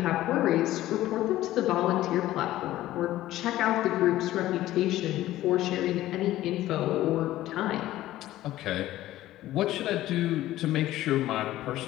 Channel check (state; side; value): quieter; right; 14.9 dB